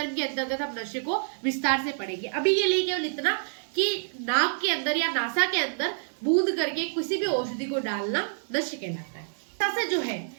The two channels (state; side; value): silent; left; digital silence